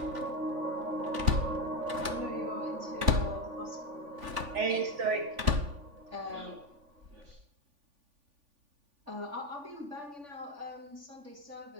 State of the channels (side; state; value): left; late; 3.5 ms